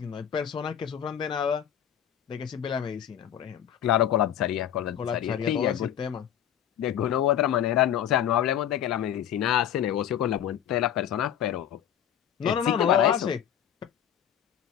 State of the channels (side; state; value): right; quieter; 10.2 dB